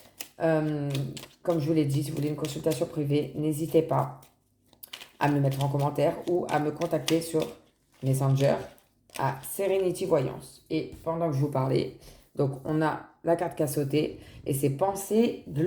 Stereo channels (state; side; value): identical; both; correlation 1.00